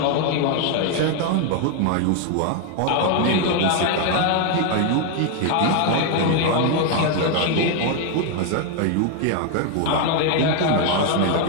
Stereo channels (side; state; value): both; different; correlation 0.01